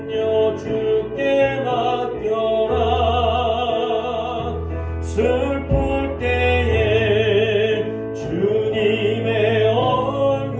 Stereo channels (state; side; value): identical; both; correlation 1.00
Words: 주께 맡겨라 슬플 때에 주님의